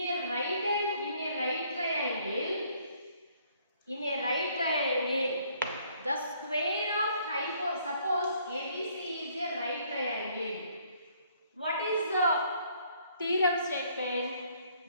a right triangle, the square of suppose ABC is a right triangle. What is the theorem statement?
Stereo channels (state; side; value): inverted; both; correlation -0.64